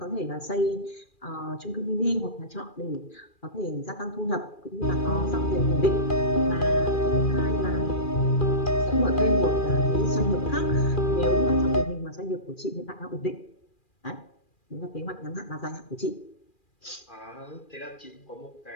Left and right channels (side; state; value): right; late; 2.4 ms